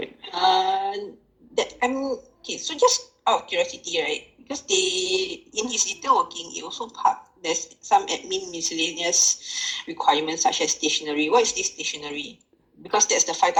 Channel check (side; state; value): both; identical; correlation 1.00